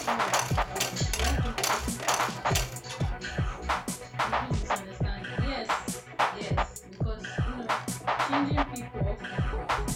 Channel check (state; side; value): identical; both; correlation 1.00